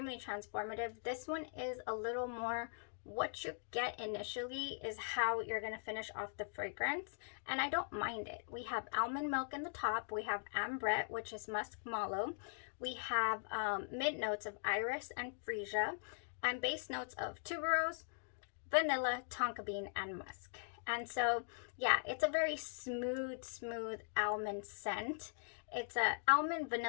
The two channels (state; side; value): silent; right; digital silence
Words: transformative. This one is a little more, what you get initially is how you're going to finish off the fragrance, and I don't mind it. We have almond milk in the top, we have ambrette, which is musk mallow, we have mid notes of iris and freesia, and base notes of tuberose, vanilla, tonka bean, and musk. And so, yeah, it's a very smooth almond scent. It's a almond